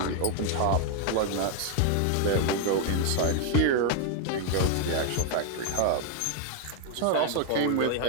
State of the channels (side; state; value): both; different; correlation 0.00